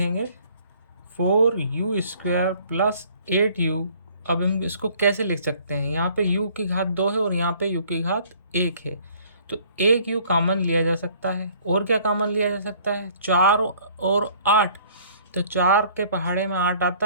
4u² प्लस 8u। अब हम इसको कैसे लिख सकते हैं, यहाँ पे u की घात 2 है और यहाँ पे u की घात 1 है, तो एक u कॉमन लिया जा सकता है। और क्या कॉमन लिया जा सकता है, 4 और 8, तो 4 के पहाड़े में 8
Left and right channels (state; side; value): inverted; both; correlation -0.57